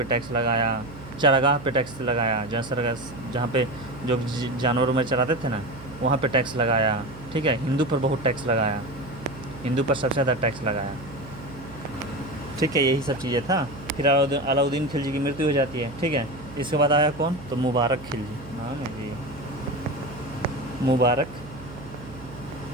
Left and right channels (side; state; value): right; noise; hum, 15 dB below the sound